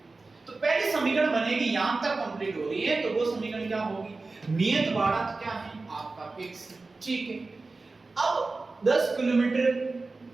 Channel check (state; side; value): quieter; left; 3.6 dB